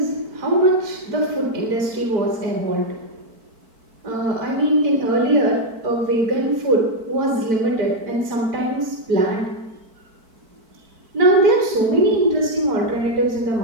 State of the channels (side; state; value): left; late; 4.5 ms